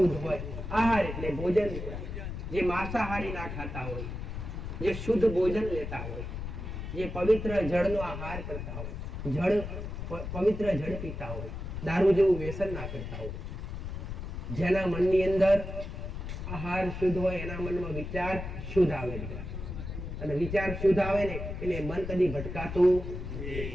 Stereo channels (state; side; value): noise; left; rumble, 6 dB below the sound